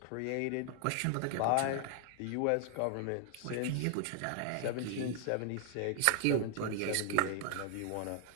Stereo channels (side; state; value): both; different; correlation 0.00